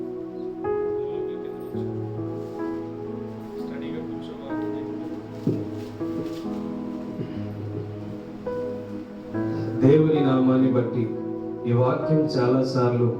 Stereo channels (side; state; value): both; identical; correlation 1.00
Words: దేవుని నామాన్ని బట్టి ఈ వాక్యం చాలాసార్లు